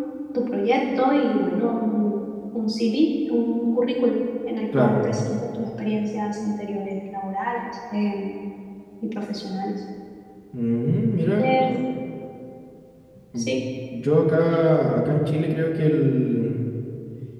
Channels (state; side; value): identical; both; correlation 1.00